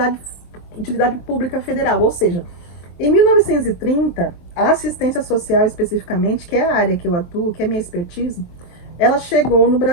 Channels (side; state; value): right; late; 23 ms